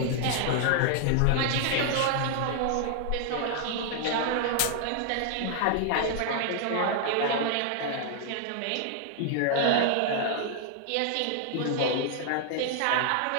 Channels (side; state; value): both; different; correlation 0.00